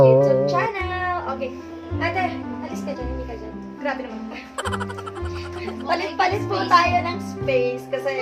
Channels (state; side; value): identical; both; correlation 1.00